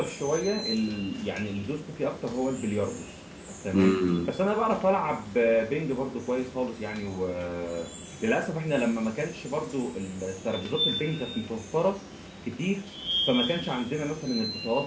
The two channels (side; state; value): both; identical; correlation 1.00